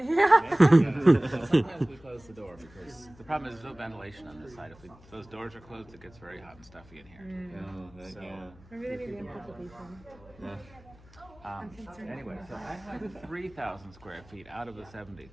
we close the door because the problem is there's no ventilation on this side. If those doors are closed, it gets very hot and stuffy in here. Maybe they need to input the beef in. Anyway, so I have 3,000 square feet out of the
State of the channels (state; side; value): noise; left; hum, 24 dB below the sound